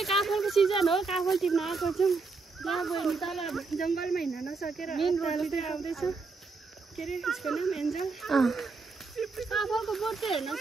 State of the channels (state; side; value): quieter; left; 4.2 dB